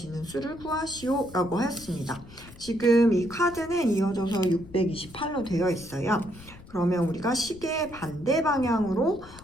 수를 구하시오 라고 하였습니다. 지금 이 카드는 이어져서 628로 되어 있어요. 그러면 우리가 시계 반대 방향으로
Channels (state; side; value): noise; left; rumble, 19 dB below the sound